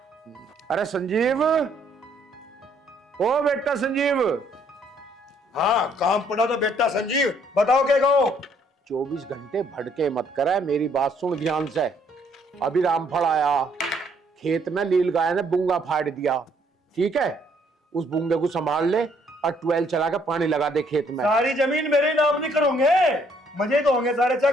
अरे संजीव, ओ बेटा संजीव। हाँ काम पड़ा तो बेटा संजीव, बताओ क्या कहो। 24 घंटे भटके मत करे, मेरी बात सुन ध्यान से। अभी रामफल आया, खेत में लील गाय ने बूंगा फाड़ दिया, ठीक है? उस बूंगे को संभाल ले और 12 चला के पानी लगा दे खेत में। सारी जमीन मेरे नाम नहीं करोगे, मजे तो होंगे सारे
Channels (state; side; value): normal; both; correlation 0.66